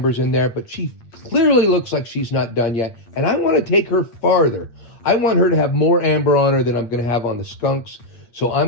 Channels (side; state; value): right; late; 8.6 ms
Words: in there, but she clearly looks like she's not done yet. And I want to take her farther. I want her to have more amber on her than I'm going to have on the skunks. So